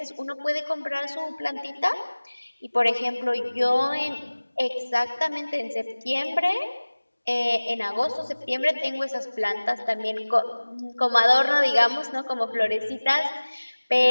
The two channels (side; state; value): both; inverted; correlation -1.00